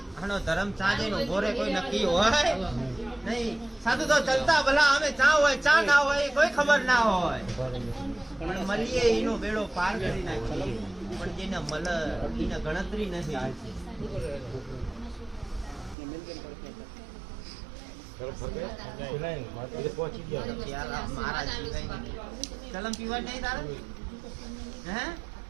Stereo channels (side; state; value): left; drops out; at 16.0 s